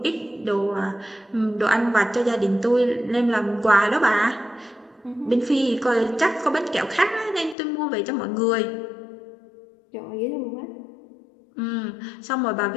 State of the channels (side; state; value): right; drops out; at 7.6 s